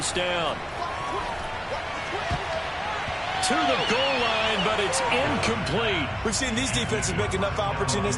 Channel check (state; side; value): identical; both; correlation 1.00